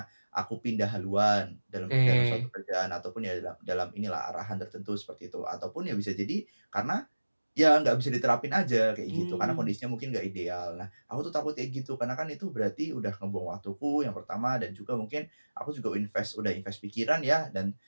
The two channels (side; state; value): both; inverted; correlation -1.00